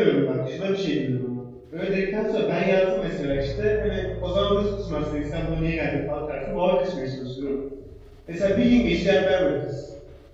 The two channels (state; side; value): identical; both; correlation 1.00